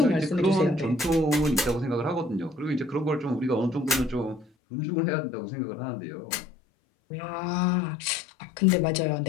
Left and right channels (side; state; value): right; drops out; at 4.5 s